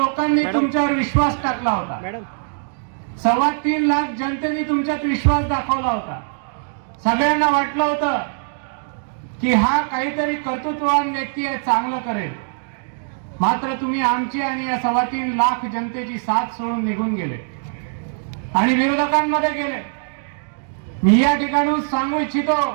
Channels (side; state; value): left; silent; digital silence